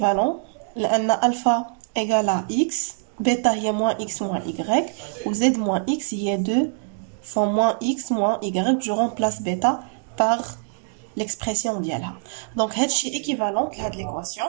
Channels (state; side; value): silent; left; digital silence